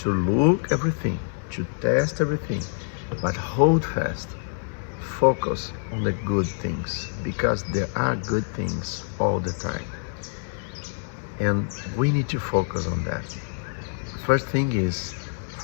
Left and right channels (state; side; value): silent; right; 60 dB below the other